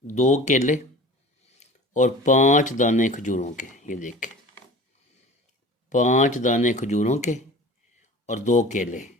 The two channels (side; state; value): both; normal; correlation 0.41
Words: 2 کیلے اور 5 دانے کھجوروں کے، یہ دیکھیں 5 دانے کھجوروں کے اور 2 کیلے